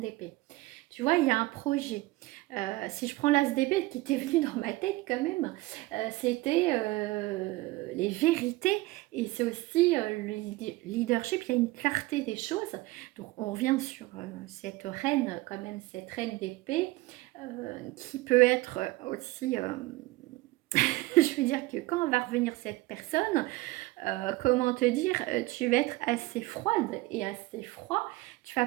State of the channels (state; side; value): quieter; left; 19.8 dB